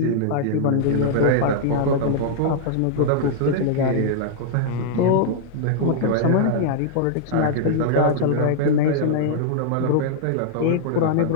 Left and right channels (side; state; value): both; different; correlation -0.01